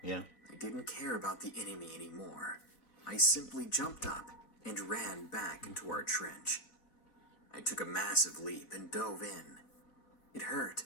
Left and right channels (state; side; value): late; right; 4.4 ms